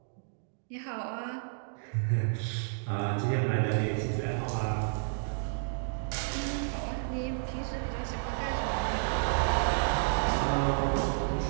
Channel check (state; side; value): silent; left; digital silence